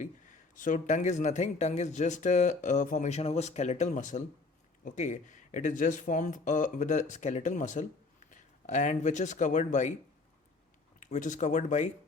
So tongue is nothing. Tongue is just a formation of a skeletal muscle. Okay, it is just formed with a skeletal muscle, and which is covered by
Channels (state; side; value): quieter; right; 3.7 dB